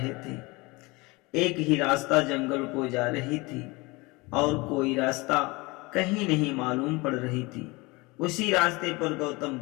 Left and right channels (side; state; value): right; quieter; 24.4 dB